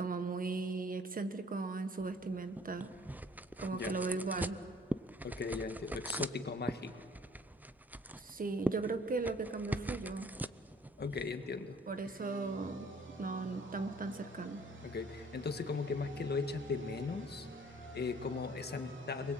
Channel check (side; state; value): both; normal; correlation 0.56